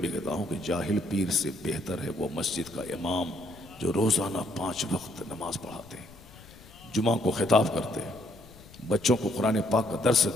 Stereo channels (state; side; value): noise; left; rumble, 21 dB below the sound